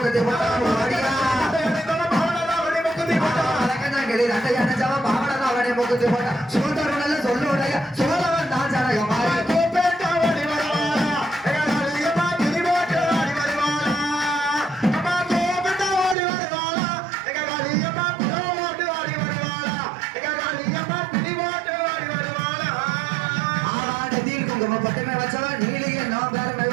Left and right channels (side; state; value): left; drops out; at 16.2 s